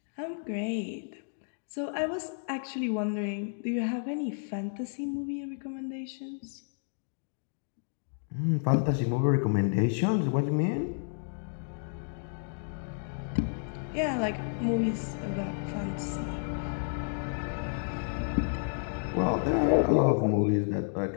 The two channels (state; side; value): silent; right; digital silence